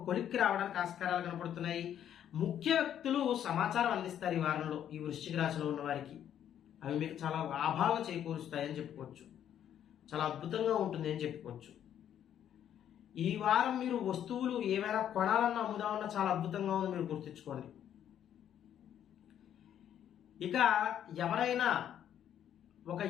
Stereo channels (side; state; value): right; quieter; 10.1 dB